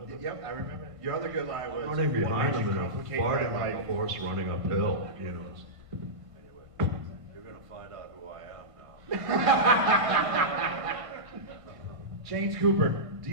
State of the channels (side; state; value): left; late; 1.5 ms